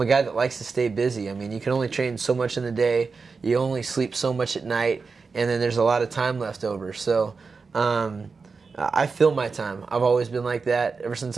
a guy that likes to stay busy. I mean, you can only train so much in the day. You only sleep so much at night, and then there's a lot of time left over. So I fill my time. I've always been like that. Ever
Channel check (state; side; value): quieter; left; 4.7 dB